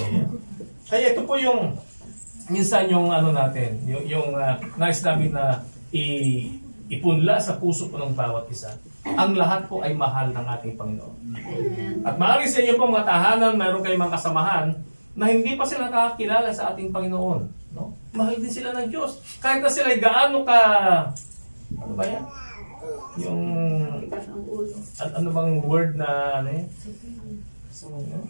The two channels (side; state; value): both; inverted; correlation -1.00